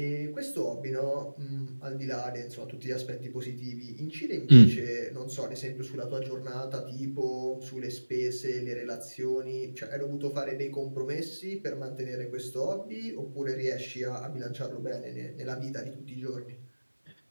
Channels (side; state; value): both; inverted; correlation -1.00